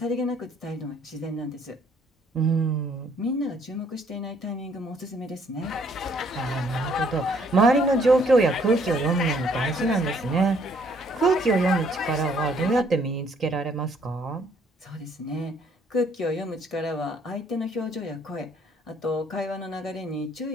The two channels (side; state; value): both; normal; correlation 0.64